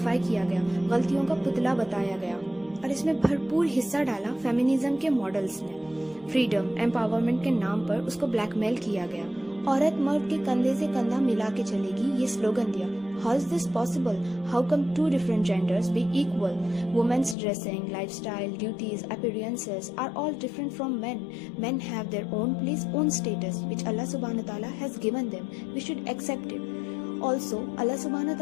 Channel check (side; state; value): right; drops out; at 17.4 s